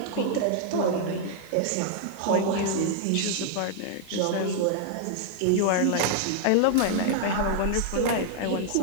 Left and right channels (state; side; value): different; both; correlation -0.01